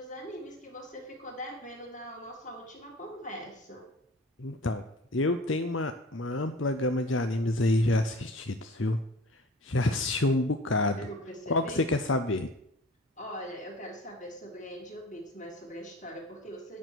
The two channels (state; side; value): normal; both; correlation 0.42